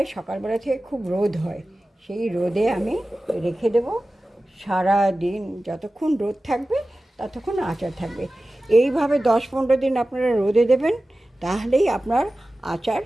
সকালবেলা থেকে খুব রোদ হয়, সেই রোদে আমি রেখে দেবো সারা দিন। যতক্ষণ রোদ থাকবে ততক্ষণ আচার থাকবে। এইভাবে 10-15 দিন আপনারা রোদে দেবেন, তাহলেই আপনার আচার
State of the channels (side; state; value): both; normal; correlation 0.95